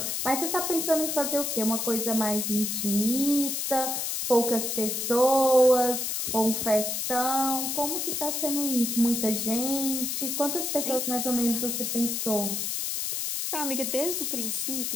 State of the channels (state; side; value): noise; left; hiss, 1 dB below the sound